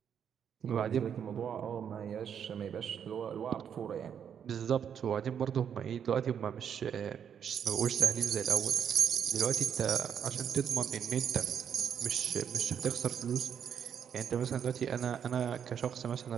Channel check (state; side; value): quieter; left; 8.2 dB